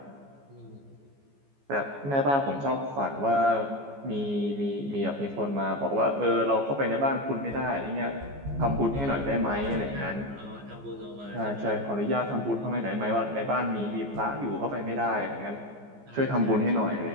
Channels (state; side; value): late; left; 14 ms